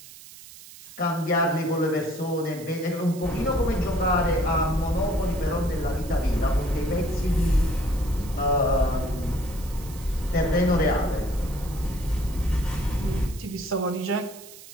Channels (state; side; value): noise; right; hiss, 18 dB below the sound